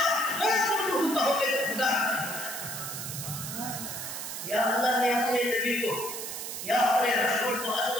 وہ رسول کہو گے تو خدا یا اللہ نے اپنے نبی کو یا اپنے رسول کو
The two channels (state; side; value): noise; right; hiss, 6 dB below the sound